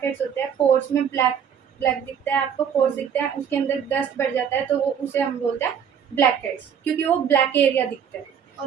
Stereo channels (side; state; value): left; quieter; 7.9 dB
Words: हेड्स होते हैं, पोर्स में ब्लैक ब्लैक दिखता है आपको, पोर्स दिखते हैं, उसके अंदर डस्ट बढ़ जाता है, तो वो उसे हम बोलते हैं ब्लैक हेड्स, क्योंकि वो ब्लैक एरिया दिखता है।